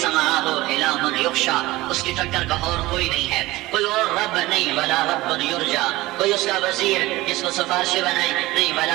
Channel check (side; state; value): left; quieter; 18.8 dB